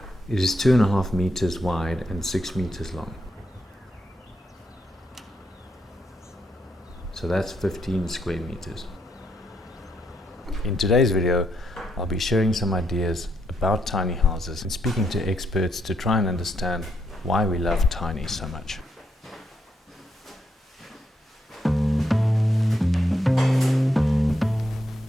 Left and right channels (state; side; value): normal; both; correlation 0.78